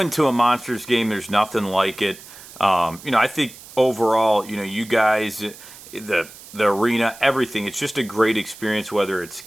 to a Monsters game, there's nothing like it. I think overall, you guys, the arena, everything, it's just a great experience, whether it's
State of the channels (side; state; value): right; noise; hiss, 18 dB below the sound